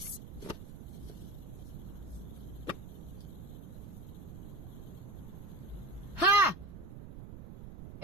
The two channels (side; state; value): right; noise; rumble, 10 dB below the sound